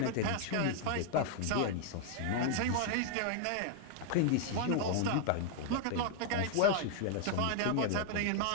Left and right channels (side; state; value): both; different; correlation 0.00